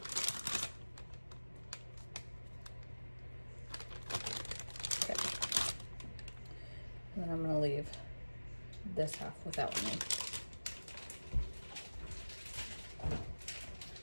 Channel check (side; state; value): both; inverted; correlation -1.00